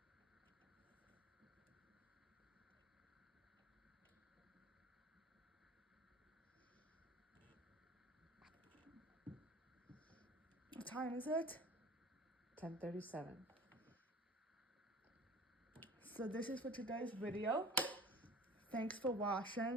What time is it? 10:37. So this is for today's video. Thanks for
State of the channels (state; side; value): normal; both; correlation 0.41